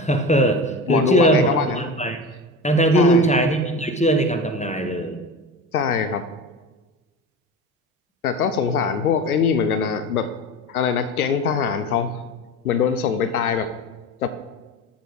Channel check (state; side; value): normal; both; correlation 0.29